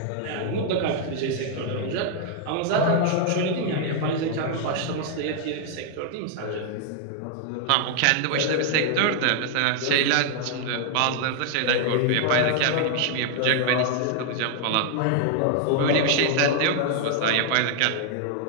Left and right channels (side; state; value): both; different; correlation 0.00